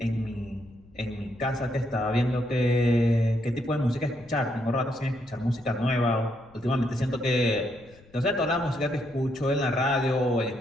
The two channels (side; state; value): left; noise; rumble, 27 dB below the sound